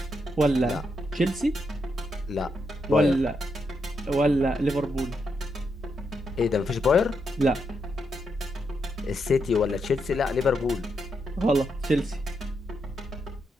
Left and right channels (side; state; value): both; normal; correlation 0.81